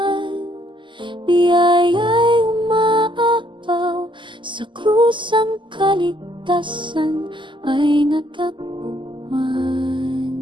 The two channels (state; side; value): late; left; 0.24 ms